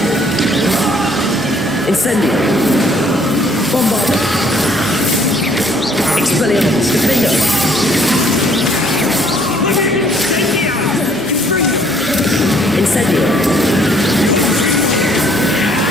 Incendio! Bombardo! Expelliarmus! Defender!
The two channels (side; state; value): both; normal; correlation 0.62